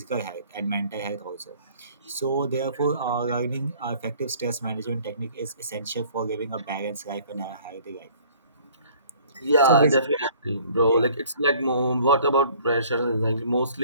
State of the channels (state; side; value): inverted; both; correlation -0.54